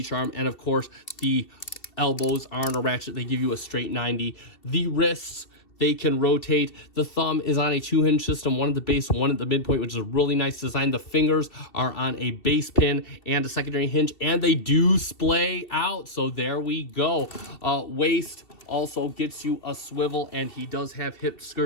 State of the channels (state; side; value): late; right; 2.7 ms